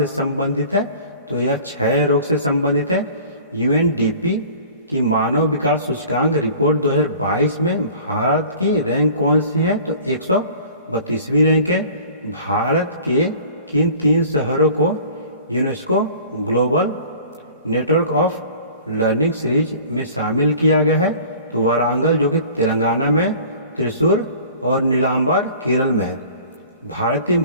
संबंधित है? तो यह क्षय रोग से संबंधित है। यूएनडीपी की मानव विकास सूचकांक रिपोर्ट 2022 में भारत की रैंक कौन सी है? तो 132वीं रैंक है। भारत के किन 3 शहरों को UNESCO global network of learning series में शामिल किया गया है? तो वारंगल, जो कि तेलंगाना में, त्रिशूर और नीलांबर केरल में है। भारतीय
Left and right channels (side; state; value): both; inverted; correlation -0.46